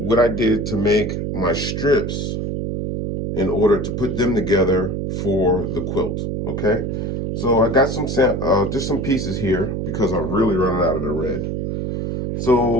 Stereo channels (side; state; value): right; noise; hum, 2 dB below the sound